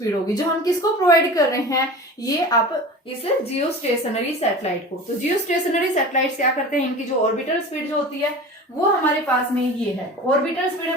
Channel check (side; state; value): both; normal; correlation 0.35